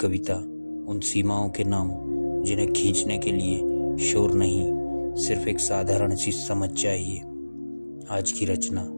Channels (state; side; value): inverted; both; correlation -1.00